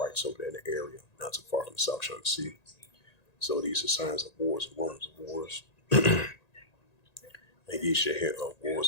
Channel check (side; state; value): right; late; 1.9 ms